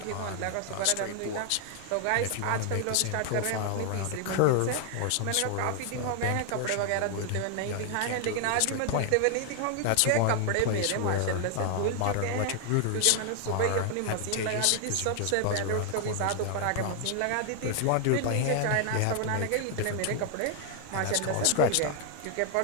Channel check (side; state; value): both; different; correlation 0.00